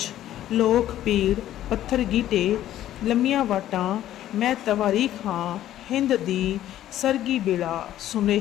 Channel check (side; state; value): right; quieter; 12.7 dB